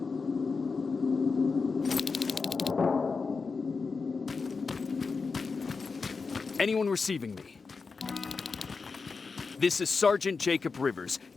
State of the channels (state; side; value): quieter; right; 4.7 dB